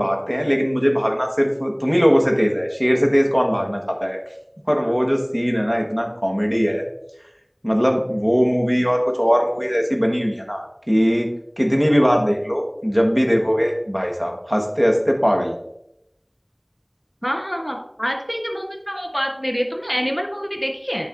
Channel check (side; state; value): both; identical; correlation 1.00